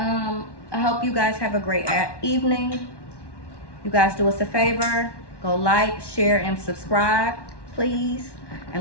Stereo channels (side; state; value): right; late; 1.1 ms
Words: I hope you guys have a great evening. You guys do us a favor. Go like, share, and subscribe, please.